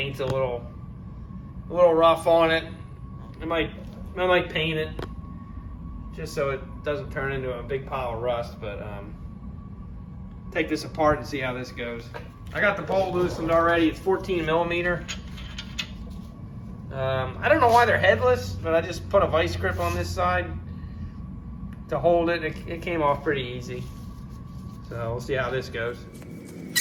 a little rough on it. I might paint it just so it doesn't turn into a big pile of rust. But take this apart and see how this goes. I got the bolt loosened already. It's 14 millimeter. I don't know why they're headless, but I just put a vice grip on this side to hold it. It came off pretty easy. So we'll see how this goes.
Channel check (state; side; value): identical; both; correlation 1.00